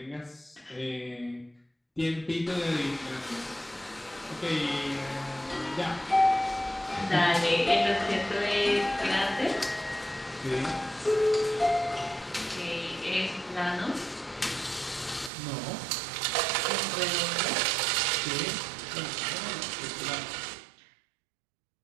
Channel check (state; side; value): drops out; left; at 15.3 s